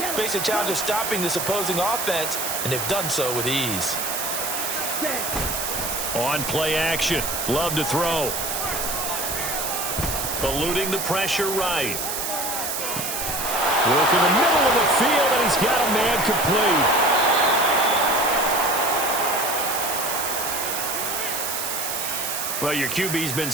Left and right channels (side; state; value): right; noise; hiss, 3 dB below the sound